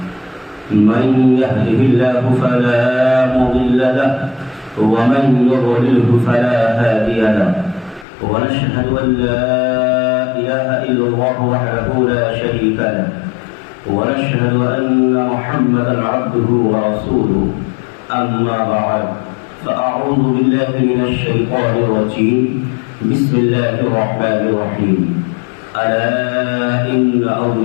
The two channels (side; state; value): right; drops out; at 8.1 s